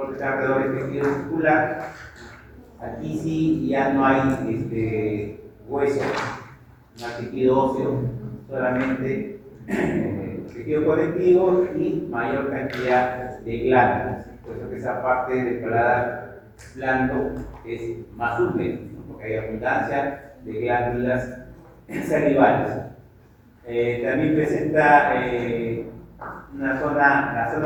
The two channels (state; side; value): identical; both; correlation 1.00